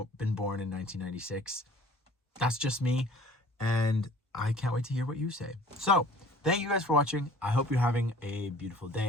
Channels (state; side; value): normal; both; correlation 0.50